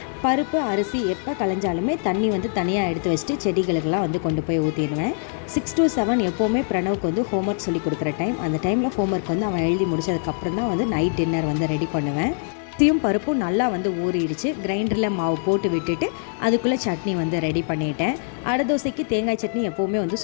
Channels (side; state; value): right; silent; digital silence